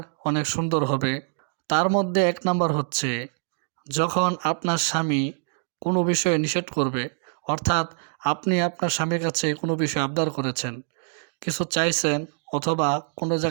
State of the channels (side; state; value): left; silent; digital silence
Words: অনেক সুন্দর হবে। তার মধ্যে ১ নাম্বার হচ্ছে, যখন আপনার স্বামী কোনো বিষয়ে নিষেধ করবে, অর্থাৎ আপনি আপনার স্বামীর কাছে কোনো বিষয়ে আবদার করেছেন, কিছু চাইছেন অথবা কোনো